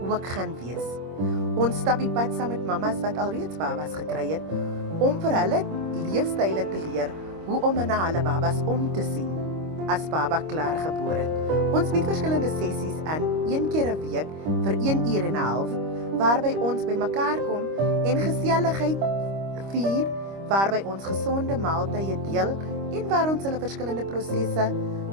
ook gaan wees. Ons stap die pad saam met mammas wat alreeds babas gekry het om vir hulle leefstyle te leer hoe om na hulle babas om te sien as baba klaar gebore het. Ons bied verskillende sessies aan 1 keer 'n week vir 1 uur en 'n half waarby ons bymekaar kom en geselligheid vier, waarby ons gesonde maaltye deel en waar ons hulle verskillende prosesse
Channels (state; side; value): late; left; 25 ms